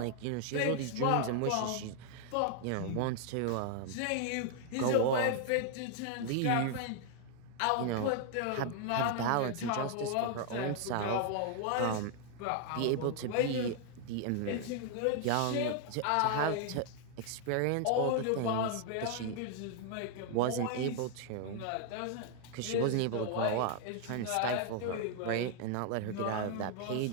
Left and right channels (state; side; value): different; both; correlation 0.00